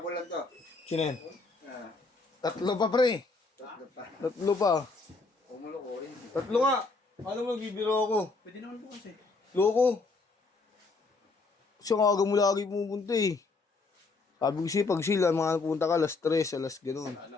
lang to. Sino yan? Ah, Tatlo pa, pre. tatlo pa. Tatlo pa. Kumulo ko yun. Tatlo nga. Paano magbibiro ako? Pwede naman po kasi. Loko. Siya nga aga mo lagi pumunta eh. Sabi ko siya, pag sila, mga napunta ka, alas 3, alas gano'n. Ano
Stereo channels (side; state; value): right; quieter; 3.9 dB